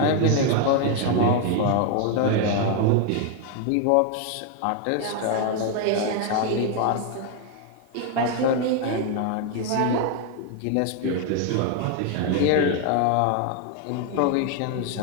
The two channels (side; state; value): both; different; correlation 0.01